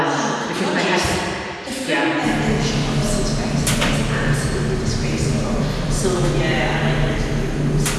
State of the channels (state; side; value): identical; both; correlation 1.00